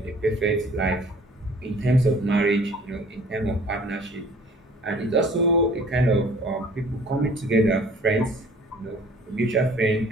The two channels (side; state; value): both; normal; correlation 0.51